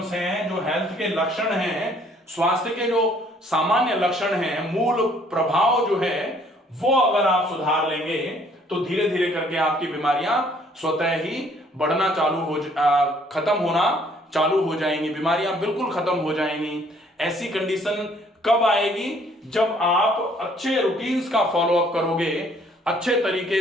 हैं, जो हेल्थ के लक्षण हैं, स्वास्थ्य के जो सामान्य लक्षण हैं, मूल प्रभाव जो है वो अगर आप सुधार लेंगे तो धीरे धीरे करके आपकी बीमारियां स्वतः ही बढ़ना चालू हो, खत्म होना चालू हो जाएंगी। बीमारियां बिल्कुल खत्म हो जाएंगी। ऐसी कंडीशन कब आएगी? जब आप अच्छे रूटीन्स का फॉलोअप करोगे, अच्छे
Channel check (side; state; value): both; normal; correlation 0.61